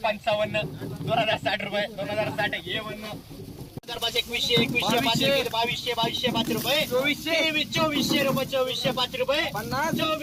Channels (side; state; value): both; identical; correlation 1.00